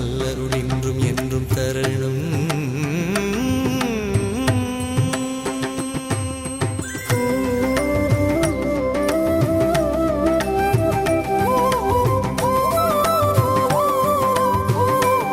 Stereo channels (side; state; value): both; identical; correlation 1.00